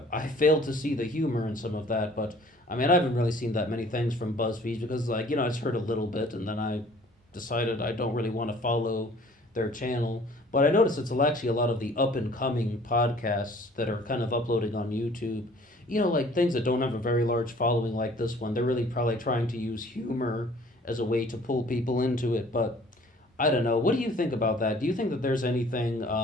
I failed to see the humor in some of that, but I mean, I haven't really seen that many things from BuzzFeed because, like, I just heard a little bit and then I decided I don't really want to follow their channel. But I noticed it's actually a lot of the up and coming podcasts that are kind of uploading on YouTube. Like things that don't have a very large following like this one. They're really probably trying to use humor as a way to pull people into it, but I don't know. What do you think about that? Do you think that there's anything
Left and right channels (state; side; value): normal; both; correlation 0.53